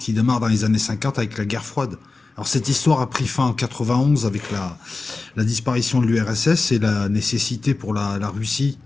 démarre dans les années 50 avec la guerre froide. Alors cette histoire a pris fin en 91 avec la disparition de l'URSS et la nécessité pour la Russie,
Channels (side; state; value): right; quieter; 3.7 dB